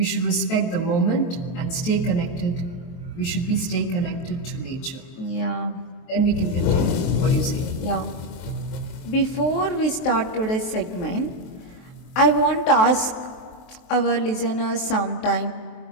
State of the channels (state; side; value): late; right; 23 ms